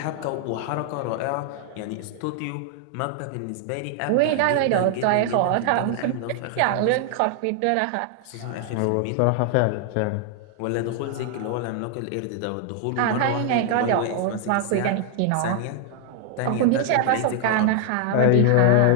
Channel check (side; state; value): both; different; correlation 0.00